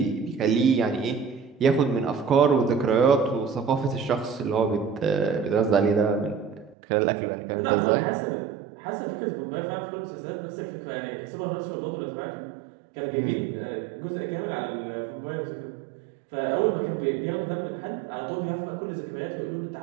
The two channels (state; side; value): drops out; left; at 6.8 s